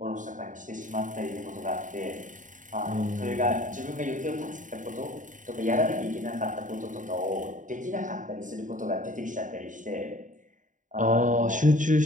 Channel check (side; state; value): left; late; 0.37 ms